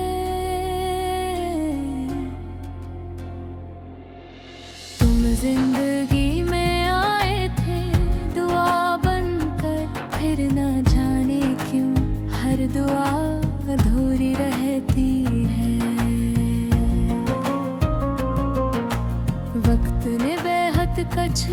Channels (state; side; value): identical; both; correlation 1.00